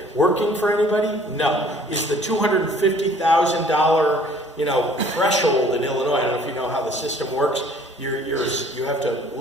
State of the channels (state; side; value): normal; both; correlation 0.55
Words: working for anybody? No. Is the $250,000 threshold in Illinois, I don't know if you know how the system works, you have to